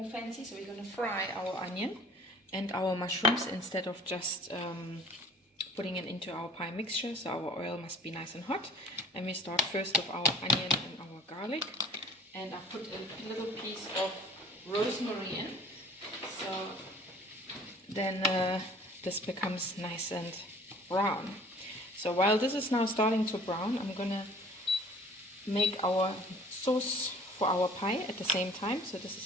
fancy, so we're going to fry our onion and our mushrooms instead of just putting it into our pie mixture. So our oil must be nice and hot, and we start first with our onion and our garlic, and I put a little piece of rosemary in, so then this becomes nice and brown. So while this is now starting to brown, I'm gonna make our sauce for our pie at the same time. So this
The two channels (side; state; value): both; normal; correlation 0.48